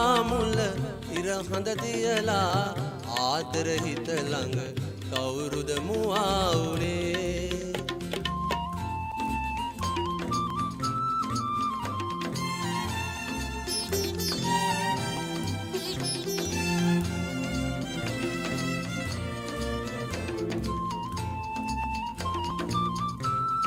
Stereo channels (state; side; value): identical; both; correlation 1.00